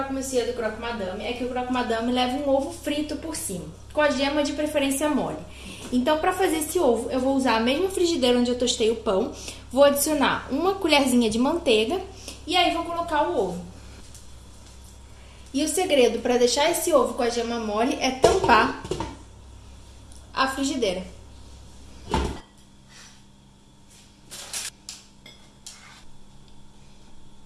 monsieur do croque madame é que o croque madame leva um ovo frito por cima, com a gema de preferência mole. Então, para fazer esse ovo, eu vou usar a mesma frigideira onde eu tostei o pão, vou adicionar uma colherzinha de manteiga e aí vou colocar o ovo. E o segredo para deixar esse ovo com a gema mole é tampar a frigideira.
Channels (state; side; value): identical; both; correlation 1.00